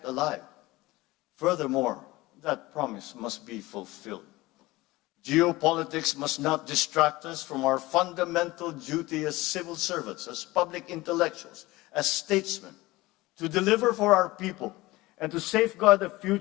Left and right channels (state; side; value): quieter; right; 19.9 dB